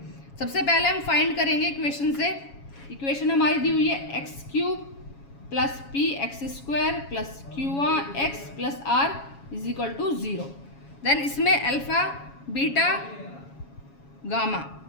सबसे पहले हम find करेंगे equation से। Equation हमारी दी हुई है x cube plus P X square plus Q X plus R is equal to 0। Then इसमें अल्फ़ा बीटा गामा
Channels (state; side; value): late; right; 7.2 ms